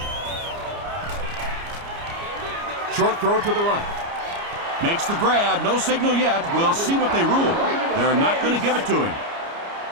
Short throw to the right. Makes the grab. No signal yet. We'll see what they rule. They're not going to give it to him.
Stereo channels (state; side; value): late; left; 29 ms